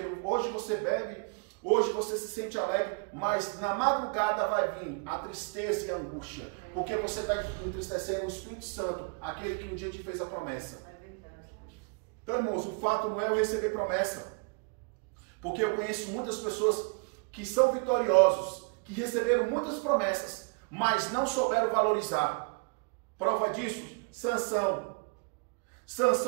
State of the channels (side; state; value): left; quieter; 34.1 dB